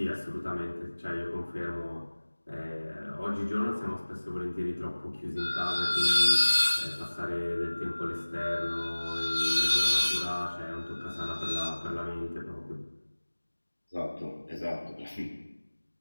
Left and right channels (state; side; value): inverted; both; correlation -1.00